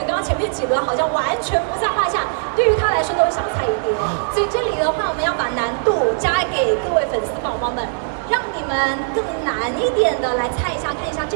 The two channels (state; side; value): silent; left; digital silence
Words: 刚刚前面几轮好像完全不在话下，对于他来说都是小菜一碟，所以这里的话我们要把难度加给各位粉丝宝宝们，让你们更难一点的来猜一下，看一下这